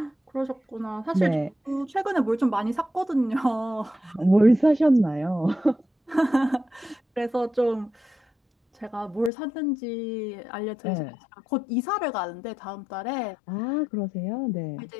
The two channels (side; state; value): right; drops out; at 9.3 s